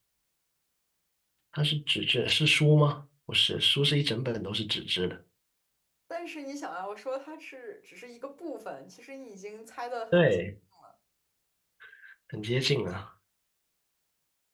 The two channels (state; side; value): identical; both; correlation 1.00